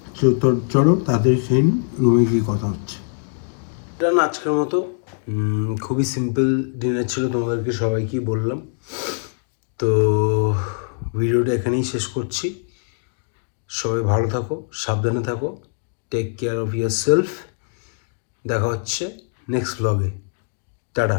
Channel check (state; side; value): silent; right; 59 dB below the other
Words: তো চলো তাড়াতাড়ি সেই রুমে গিয়ে কথা হচ্ছে। এটা না আজকের মতো খুবই সিম্পল ডিনার ছিল, তোমাদেরকে সবাইকেই বললাম। তো ভিডিওটা এখানেই শেষ করছি। সবাই ভালো থাকো, সাবধানে থাকো, take care of yourself. দেখা হচ্ছে নেক্সট ব্লগে। Tata,